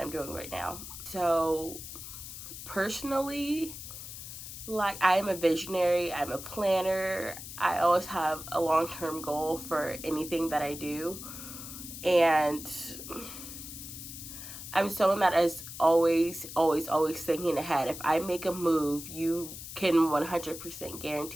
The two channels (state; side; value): noise; left; hiss, 11 dB below the sound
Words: I'm doing right now. So personally, like, I am a visionary, I'm a planner. I always have a long-term goal for anything that I do. And I'm someone that is always thinking ahead. If I make a move, you can 100%